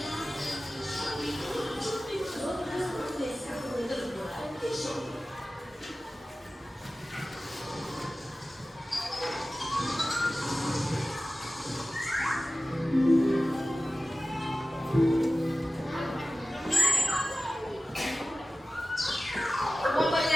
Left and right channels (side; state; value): both; normal; correlation 0.96